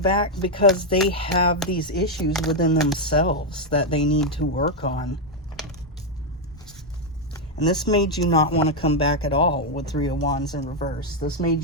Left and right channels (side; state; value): both; normal; correlation 0.02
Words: because they have these issues within themselves that they need to work on. And this made you not want to come back at all with Three of Wands in reverse. This made